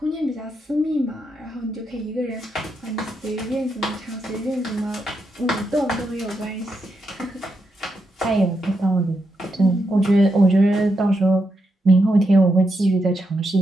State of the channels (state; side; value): normal; both; correlation 0.83